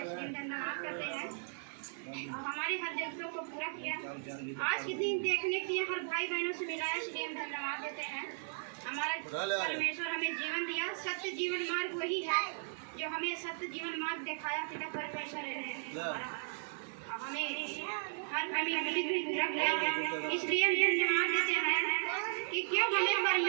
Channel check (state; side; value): silent; left; 54 dB below the other